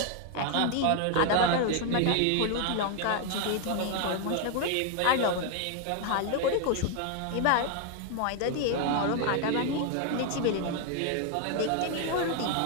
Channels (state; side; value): different; both; correlation 0.00